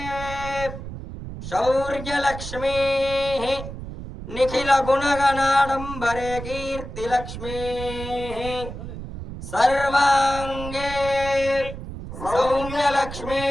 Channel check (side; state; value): right; noise; rumble, 10 dB below the sound